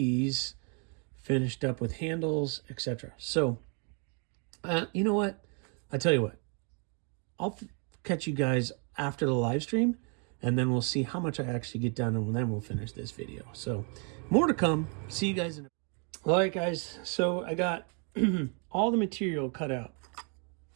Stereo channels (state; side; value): quieter; left; 38.6 dB